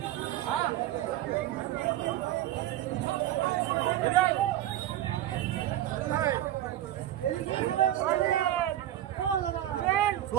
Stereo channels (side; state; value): left; quieter; 13.0 dB